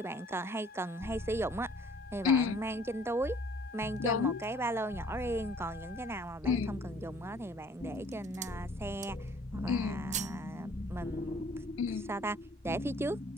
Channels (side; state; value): both; normal; correlation 0.56